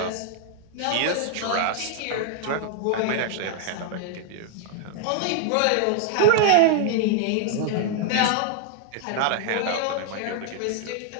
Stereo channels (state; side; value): different; both; correlation 0.00